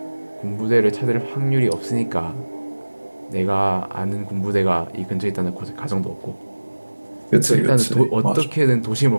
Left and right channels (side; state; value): both; inverted; correlation -1.00